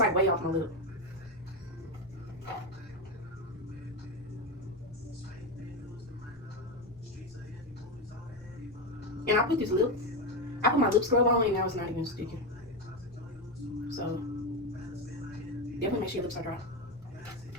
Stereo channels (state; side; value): normal; both; correlation 0.13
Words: way off my lip. And I put my lip scrub on and now it's not even sticking. So, definitely make sure your lips are dry.